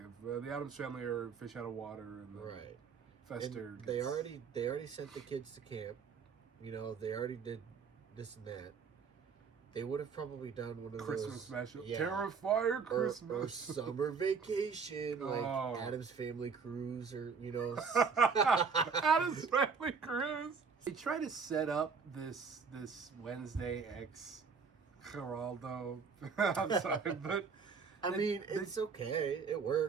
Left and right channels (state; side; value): quieter; left; 5.6 dB